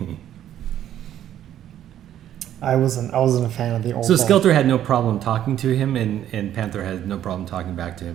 I wasn't a fan of the old. So Skeletor had no problem talking to him, and Panther had no problem talking back to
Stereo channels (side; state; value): left; quieter; 11.3 dB